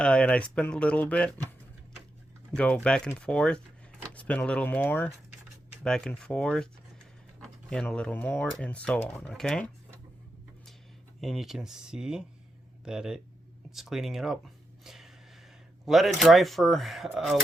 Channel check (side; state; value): both; normal; correlation 0.86